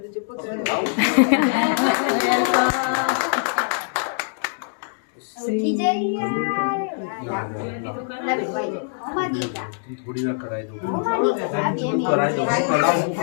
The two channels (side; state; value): right; silent; digital silence